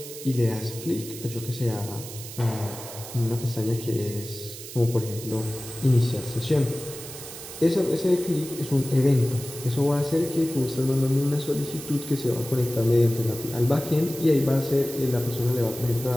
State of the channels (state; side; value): noise; right; hiss, 12 dB below the sound